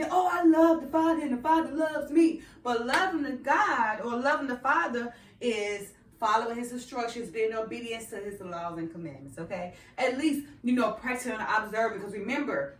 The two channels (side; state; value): both; identical; correlation 1.00